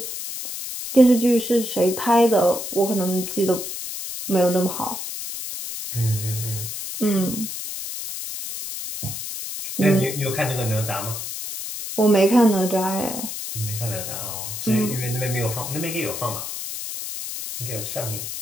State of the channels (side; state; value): left; noise; hiss, 6 dB below the sound